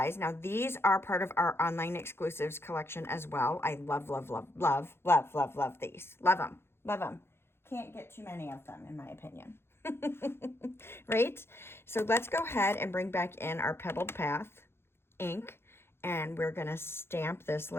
Now these are part of our online exclusives collection as well. I love, love, love, love, love, love, love these. Love them, love them. Can't get too many of them, in my opinion. Right? So let's go ahead and bring back in our Pebbled Path ink, and we're going to stamp this.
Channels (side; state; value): right; late; 0.12 ms